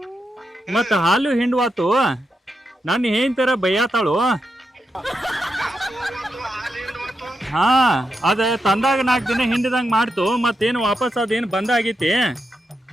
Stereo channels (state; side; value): normal; both; correlation 0.86